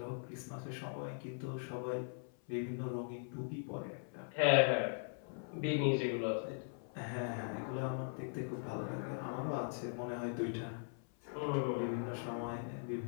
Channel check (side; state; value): right; silent; 51 dB below the other